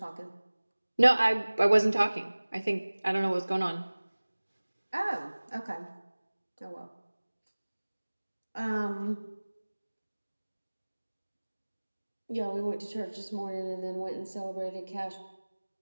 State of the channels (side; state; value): both; inverted; correlation -1.00